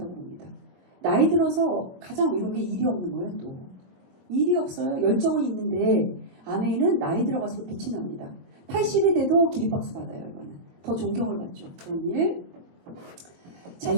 봅니다. 나이 들어서 가장 이런 게 일이 없는 거예요, 또. 일이 없어요. 열정은 있는데 아메이는 나이 들어갈수록 빛이 납니다. 80이 돼도 기립박수 받아요, 이거는. 더 존경을 받죠. 그런 일. 자,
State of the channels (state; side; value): late; left; 22 ms